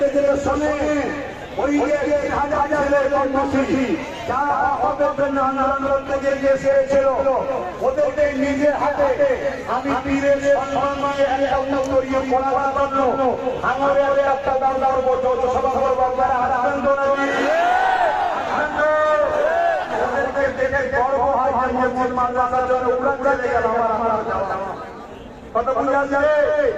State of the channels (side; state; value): both; identical; correlation 1.00